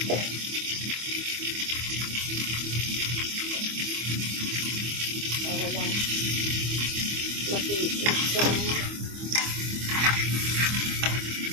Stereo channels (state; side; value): late; left; 25 ms